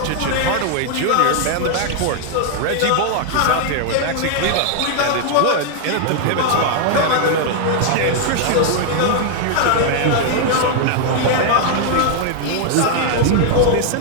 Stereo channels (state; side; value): different; both; correlation 0.00